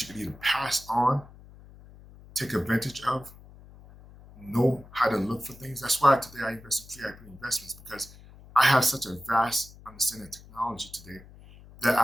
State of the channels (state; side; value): noise; left; hum, 21 dB below the sound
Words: you can either pass on, take advantage of, know how to look for things. That's why today I invest in free IP investments, because I have such a vast understanding of technology today that